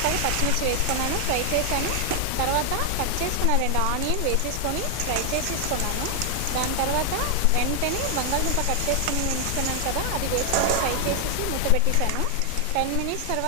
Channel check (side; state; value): both; different; correlation 0.00